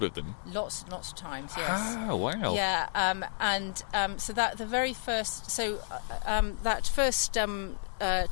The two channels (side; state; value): right; silent; digital silence